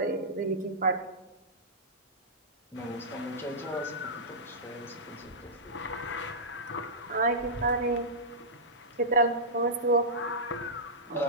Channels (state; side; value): normal; both; correlation -0.14